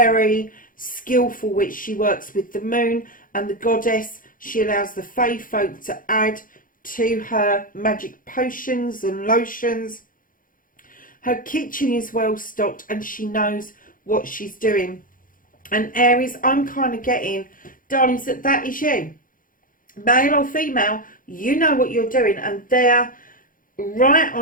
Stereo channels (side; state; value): right; late; 0.40 ms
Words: skillful witch. She works with the moon and the goddess. She allows the fae folk to add to her magic potions and lotions. Her kitchen is well stocked, and she knows what she's doing. And Aries, I'm kind of getting, darlings, that is you. Male or female, you know what you're doing. And there, right